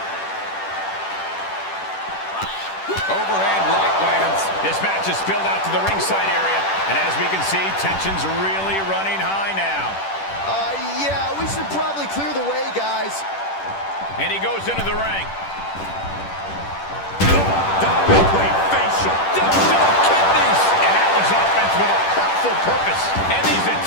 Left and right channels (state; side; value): late; right; 10 ms